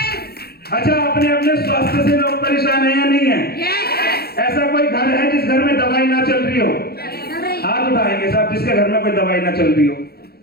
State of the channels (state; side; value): late; right; 0.46 ms